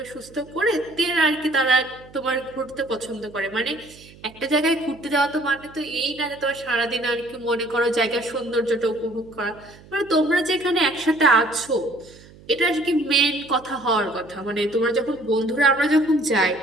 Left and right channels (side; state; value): right; noise; hum, 23 dB below the sound